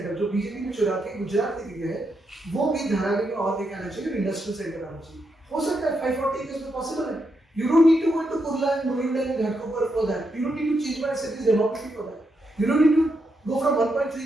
जो बीजेपी ने चुरा के गुजरात लेके गया है, वो भी धारावी में और लेके आना चाहिए, इंडस्ट्रियल सेंटर आना चाहिए. हो सकता है 540 एकर्स में पॉसिबल है. You don't need to go into Kurla and Mulund and Ghatkopar for that. You don't need to change my city's demography for that. You don't need to go from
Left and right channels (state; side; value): normal; both; correlation 0.82